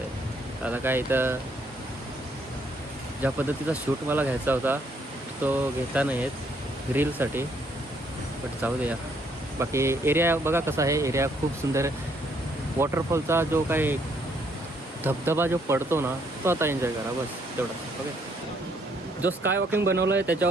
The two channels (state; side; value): normal; both; correlation 0.69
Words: आहे. आता काय इथं ज्या पद्धतीचा शूट मला घ्यायचा होता तो घेता नाही येत रीलसाठी, बट जाऊ दे यार. बाकी एरिया बघा कसा आहे, एरिया खूप सुंदर आहे. वॉटरफॉलचा जो काही धबधबा जो पडतो ना, तो आता एन्जॉय करा बस तेवढा. ओके, जो स्काय वॉकिंग बनवलं आहे